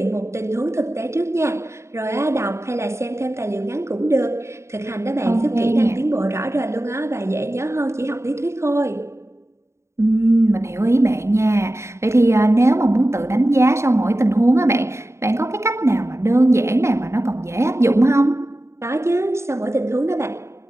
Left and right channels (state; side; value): late; left; 0.13 ms